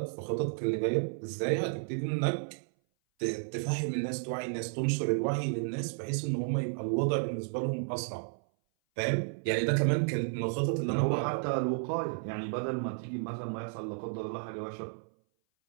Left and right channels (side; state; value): left; silent; 56 dB below the other